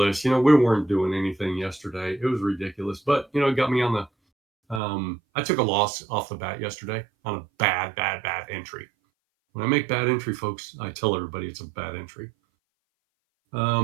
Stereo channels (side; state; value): left; drops out; at 4.8 s